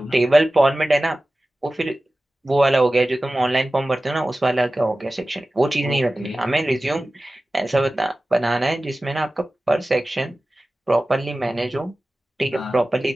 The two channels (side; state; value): both; normal; correlation 0.96